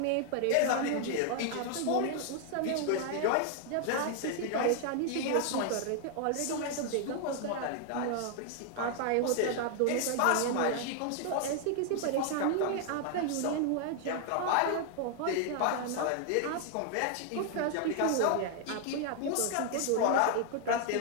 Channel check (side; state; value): both; different; correlation 0.00